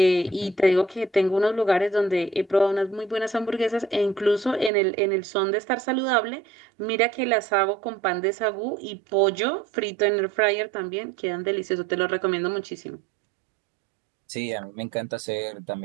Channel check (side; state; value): left; drops out; at 4.7 s